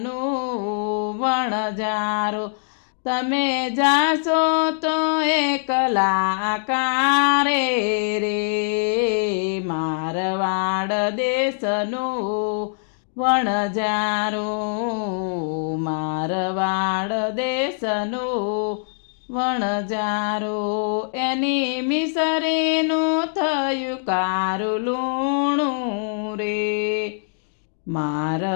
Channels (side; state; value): right; silent; digital silence